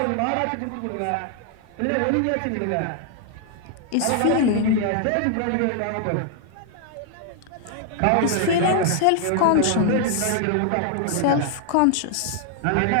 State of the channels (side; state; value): both; different; correlation 0.00